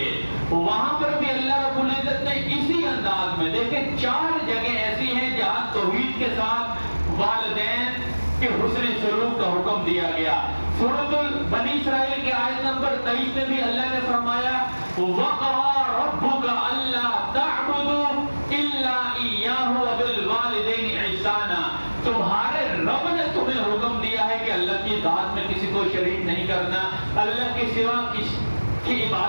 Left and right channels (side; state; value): both; inverted; correlation -1.00